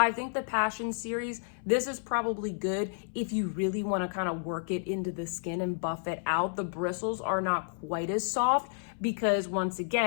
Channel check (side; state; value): right; silent; 57 dB below the other